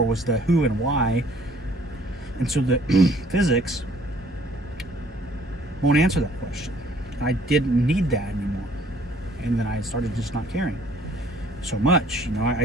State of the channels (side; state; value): both; normal; correlation 0.58